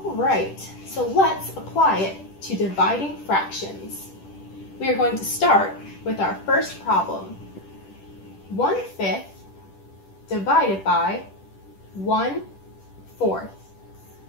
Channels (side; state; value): right; late; 10 ms